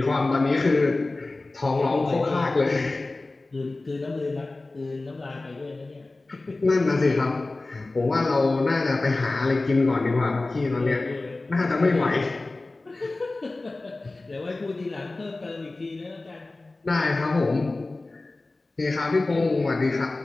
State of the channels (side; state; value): right; quieter; 3.1 dB